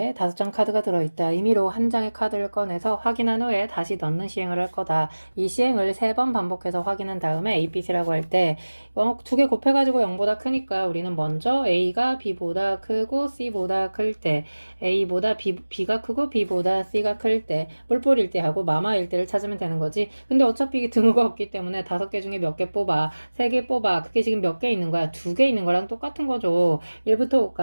5장 카드가 들어있다. 임의로 한 장의 카드를 꺼내서 확인한 후에 다시 넣는 시행을 할 거다. 이 시행을 3번 반복해서 확인한 다음에 A, B, C라고 할 때 2개 곱해가지고 0보다 크니까 우리는 먼저 A가 B보다 크고 C보다 클 때, A보다 B가 크고 B보다 C가 클 때, 뿔뿔일 때 하고 마마일 때를 찾으면 되는 거지. 근데 어차피 등호가 없기 때문에 5개 중에 몇 개 뽑아, 3개 뽑아. 그게 지금 몇 개 있는 거야? 2개 있는 거랑 똑같은 거죠. 1부터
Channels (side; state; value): both; inverted; correlation -1.00